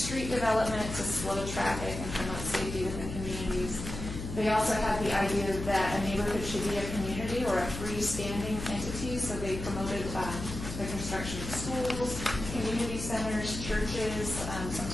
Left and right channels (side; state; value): left; noise; hum, 7 dB below the sound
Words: development to slow traffic and promote safety within communities. They also had the idea that a neighborhood should be a community or a freestanding entity, so they promoted the construction of schools, community centers, churches,